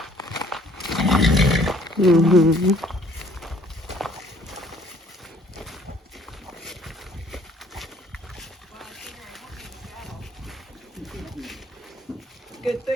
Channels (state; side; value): normal; both; correlation 0.58